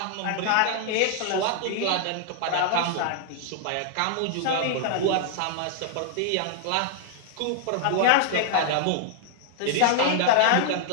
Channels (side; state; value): both; different; correlation -0.01